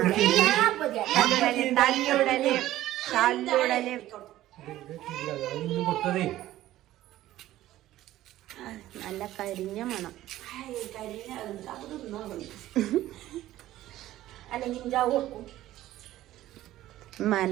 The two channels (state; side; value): quieter; left; 14.6 dB